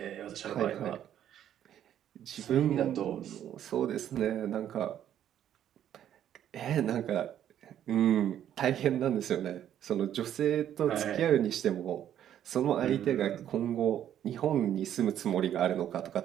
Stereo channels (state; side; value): quieter; left; 10.6 dB